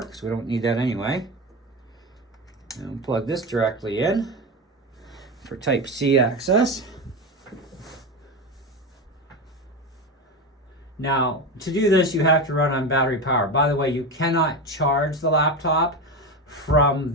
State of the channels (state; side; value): normal; both; correlation 0.20